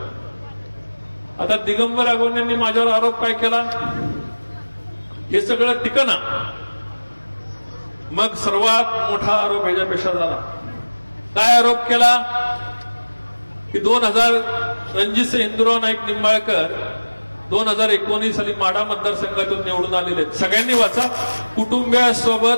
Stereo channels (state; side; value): inverted; both; correlation -1.00